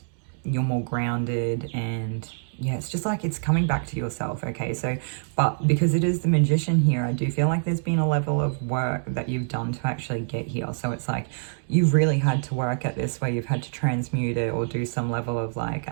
you're more grounded, and yeah, it's just like it's coming back to yourself. Okay, so but because it is the magician here, I do feel like there's been a level of work that you've done to actually get here. So it's like you've really had to work at this, where you've had to transmute it or do some level of like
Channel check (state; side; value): silent; left; digital silence